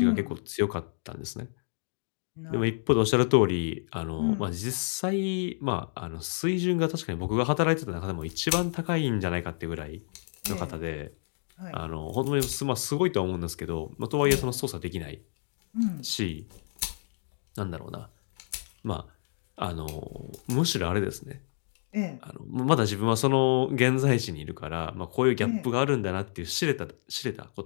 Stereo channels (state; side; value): silent; right; digital silence